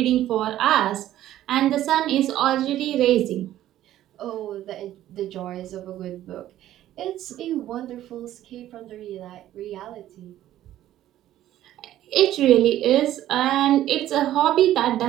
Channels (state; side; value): quieter; left; 13.1 dB